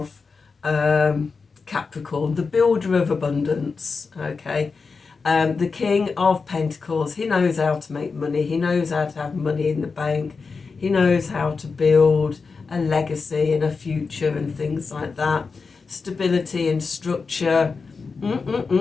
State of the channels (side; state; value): right; quieter; 4.7 dB